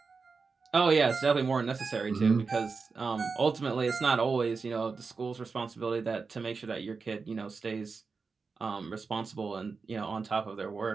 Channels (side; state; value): left; quieter; 4.7 dB